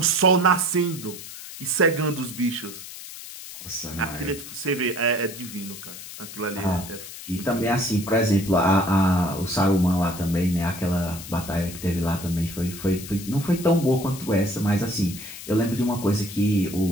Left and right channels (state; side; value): noise; left; hiss, 12 dB below the sound